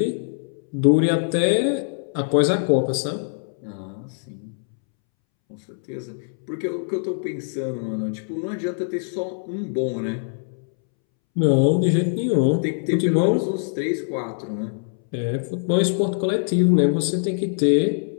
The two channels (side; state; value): right; silent; 63 dB below the other